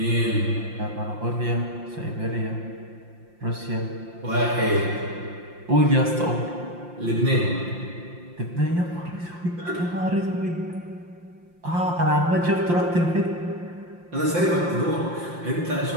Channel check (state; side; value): late; left; 5.7 ms